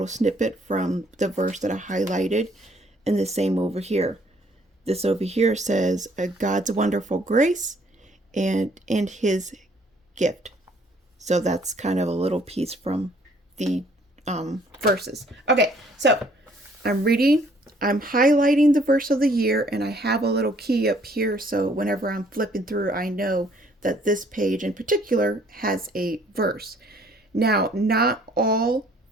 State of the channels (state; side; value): normal; both; correlation 0.61